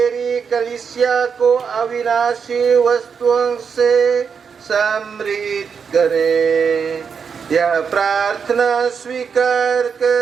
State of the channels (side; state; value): left; quieter; 6.3 dB